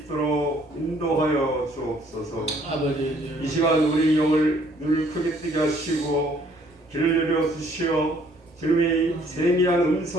인도하여 주옵소서. 아버지, 이 시간 우리 영을 눈을 크게 뜨게 하시고 길을 열어 주시어 주님의 세미한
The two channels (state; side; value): normal; both; correlation 0.62